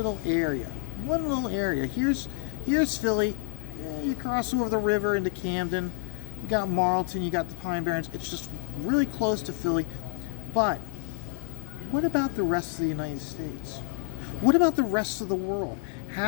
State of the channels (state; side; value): silent; right; 59 dB below the other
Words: area. Here's Philly. You cross over the river into Camden. You got Marlton. You got the Pine Barrens. It's just really close to Philly. But what about the rest of the United States? What about the rest of the world?